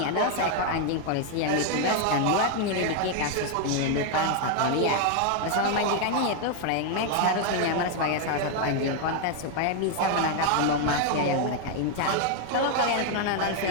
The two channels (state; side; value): different; both; correlation 0.01